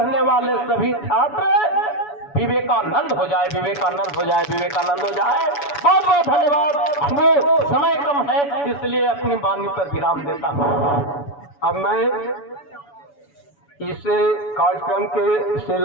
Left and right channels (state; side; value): late; right; 7.0 ms